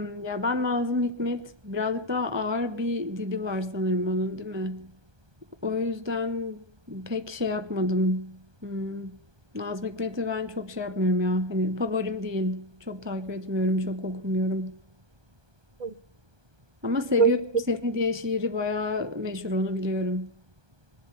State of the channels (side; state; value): left; late; 1.2 ms